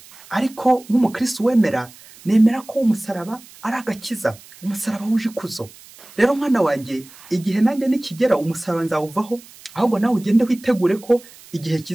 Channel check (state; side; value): noise; right; hiss, 22 dB below the sound